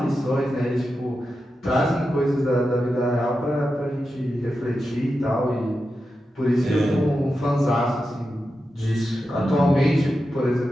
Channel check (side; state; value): both; normal; correlation 0.90